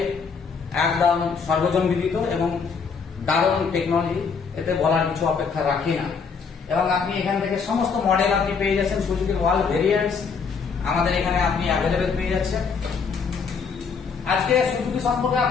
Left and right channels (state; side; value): quieter; right; 5.6 dB